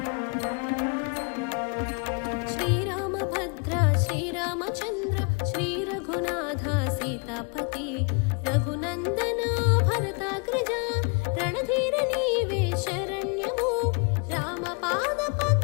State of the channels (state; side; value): quieter; right; 34.7 dB